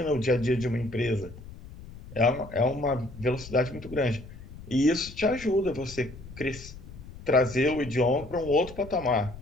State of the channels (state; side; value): noise; left; rumble, 15 dB below the sound